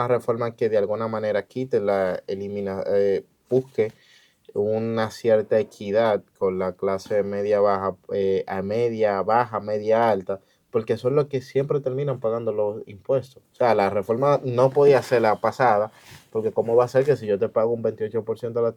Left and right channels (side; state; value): both; identical; correlation 1.00